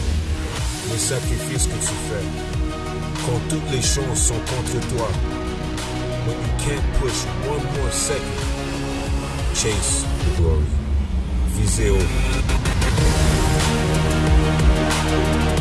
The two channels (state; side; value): identical; both; correlation 1.00